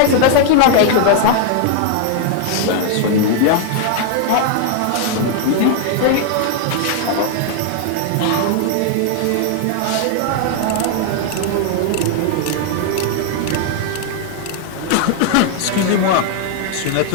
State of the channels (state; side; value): different; both; correlation 0.00